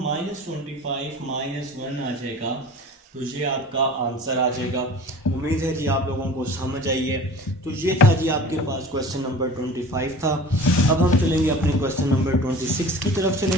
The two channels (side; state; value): both; normal; correlation 0.41